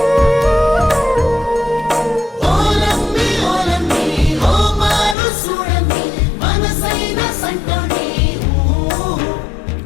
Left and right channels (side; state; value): right; drops out; at 5.2 s